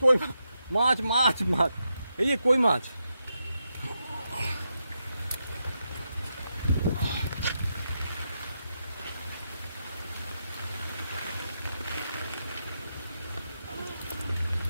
কই মাছ, মাছ মাছ, এই যে কই মাছ।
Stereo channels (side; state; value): both; inverted; correlation -0.85